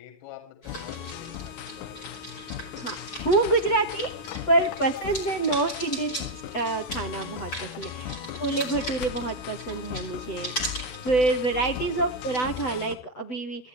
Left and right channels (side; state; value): right; late; 7.9 ms